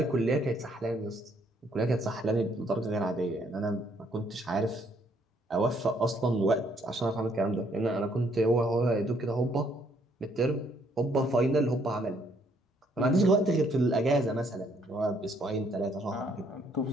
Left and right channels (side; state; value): both; normal; correlation 0.68